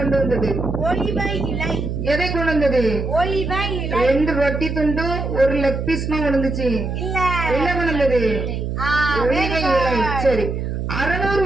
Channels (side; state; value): right; noise; hum, 3 dB below the sound